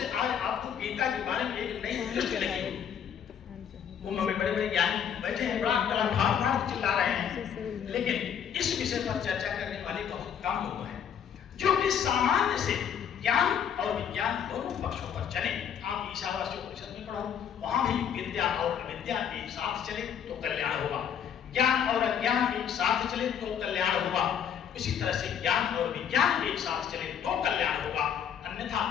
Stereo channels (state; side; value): quieter; right; 8.4 dB